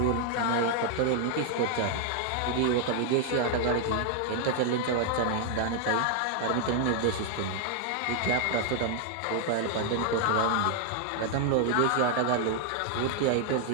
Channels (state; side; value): different; both; correlation 0.00